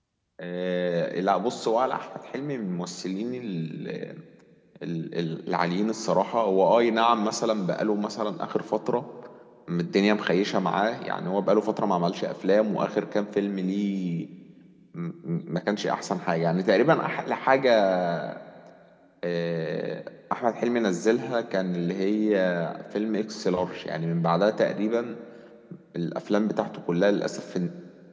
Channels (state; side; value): identical; both; correlation 1.00